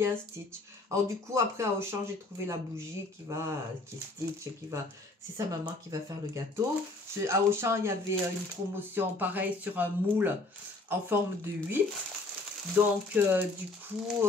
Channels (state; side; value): quieter; right; 3.2 dB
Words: Stitch. Alors du coup, après à Auchan, j'ai trouvé la bougie qui est Stitch, c'est sa maman qui va faire le gâteau. À Auchan, il y avait une promotion pareille sur un moule en forme de 8. Donc, du coup,